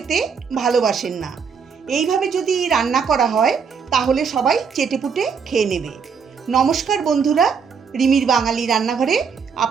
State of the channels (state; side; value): quieter; left; 6.2 dB